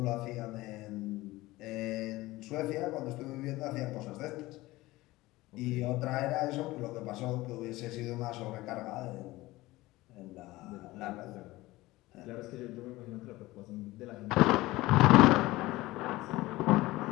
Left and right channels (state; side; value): quieter; right; 19.0 dB